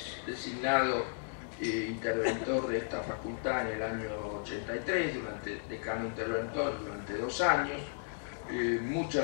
designado interventor de esta facultad en el año 83, decano interventor durante 2 años.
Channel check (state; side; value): silent; right; digital silence